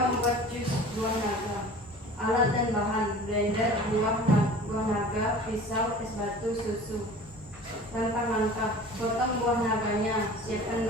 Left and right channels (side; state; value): both; normal; correlation 0.42